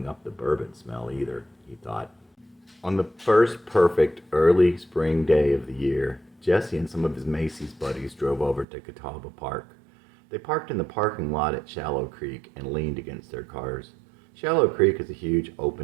up the bourbon smell either, he thought. On the first perfect early spring day of the year, Jesse and some of his Macy's buddies drove over to Catawba Park. They parked in the parking lot at Shallow Creek and leaned against their cars. Shallow Creek is a huge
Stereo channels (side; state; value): left; drops out; at 8.7 s